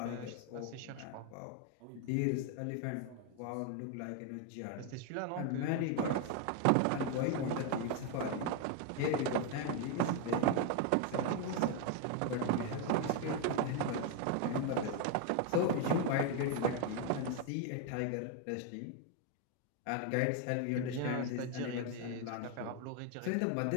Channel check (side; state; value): both; different; correlation 0.01